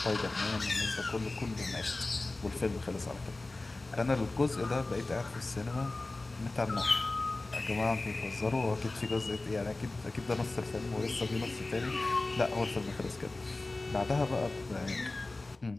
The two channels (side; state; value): right; quieter; 3.1 dB